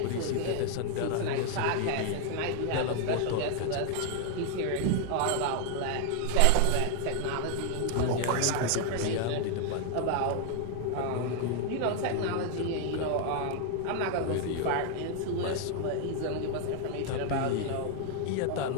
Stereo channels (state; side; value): different; both; correlation 0.00